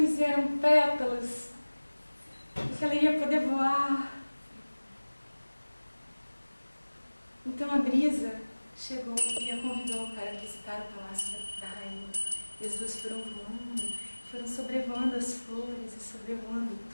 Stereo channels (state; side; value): inverted; both; correlation -1.00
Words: e eram pétalas. E que ela ia poder voar. Então a brisa chegou e a convidou para visitar o palácio da rainha. E as duas foram voando, foram sobrevoando as flores e sobrevoando